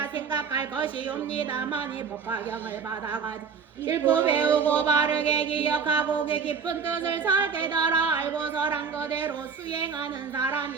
생각할 것이옵니다. 만일 법화경을 받아가 읽고 배우고 바르게 기억하고 그 깊은 뜻을 잘 깨달아 알고서란 그대로 수행하는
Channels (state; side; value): quieter; left; 5.9 dB